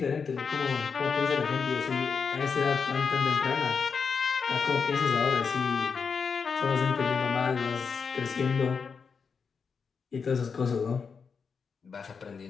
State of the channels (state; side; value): quieter; right; 5.7 dB